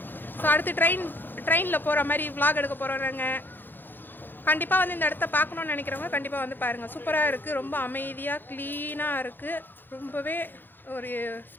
ஸோ அடுத்து ட்ரெயினில் போகிற மாதிரி விளாக் எடுக்க போகிறோம். நாங்கள் கண்டிப்பாக வந்து இந்த இடத்த பார்க்கணுன்னு நினைக்கிறவங்க கண்டிப்பாக வந்து பாருங்கள். சூப்பராக இருக்குது. ரொம்ப அமைதியாக க்ளீனாக இருக்குது. ரொம்பவே ஒரு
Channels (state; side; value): late; right; 0.094 ms